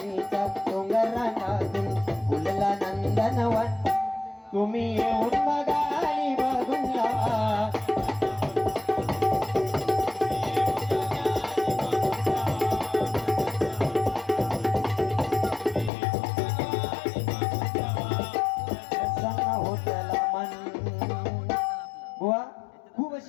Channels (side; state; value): right; drops out; at 15.9 s